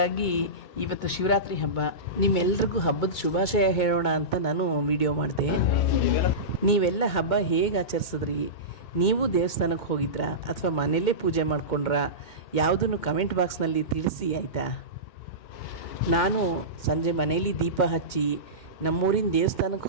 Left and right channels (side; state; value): right; late; 2.2 ms